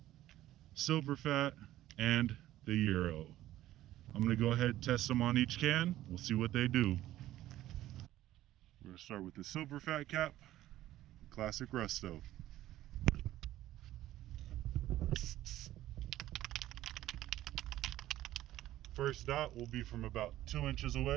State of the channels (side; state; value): left; quieter; 14.3 dB